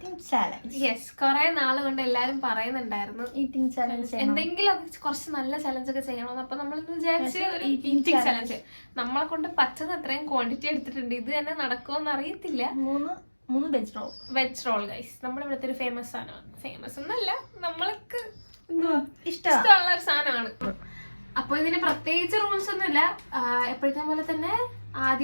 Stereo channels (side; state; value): both; inverted; correlation -1.00